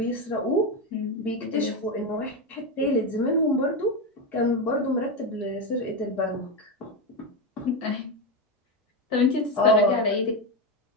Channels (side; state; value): both; normal; correlation 0.12